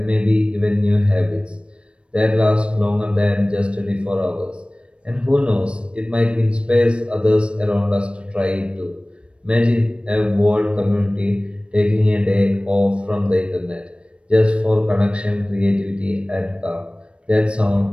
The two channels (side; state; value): left; late; 0.058 ms